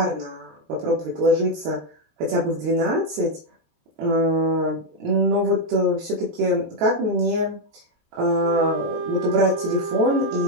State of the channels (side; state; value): left; late; 14 ms